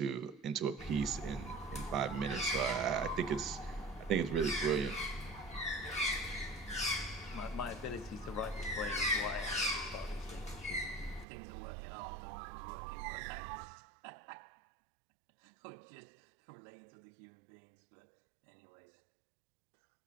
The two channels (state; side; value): drops out; left; at 11.2 s